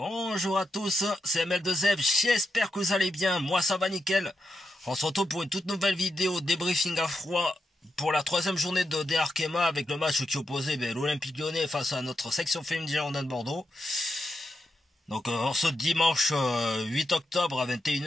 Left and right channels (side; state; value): both; normal; correlation 0.85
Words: à tous, c'est ML2F, j'espère que vous allez bien, moi ça va nickel. On se retrouve pour une toute nouvelle vidéo débriefing à froid pour la troisième journée de DR Arkema avec le match qui opposait l'Olympique Lyonnais face à notre section féminine Girondins de Bordeaux. Donc en ce dimanche 8 octobre à